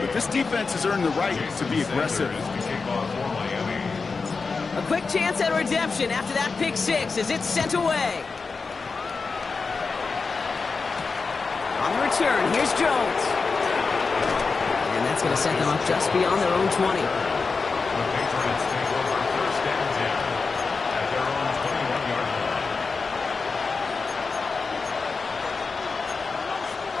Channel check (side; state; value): right; quieter; 4.5 dB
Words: but this defense has earned the right to be aggressive. A quick chance at redemption after that pick 6 as it's sent away. On the return, here's Jones. And that's going to set them up just beyond their own 20. The Patriots take over 1st and 10 at their own 21-yard line.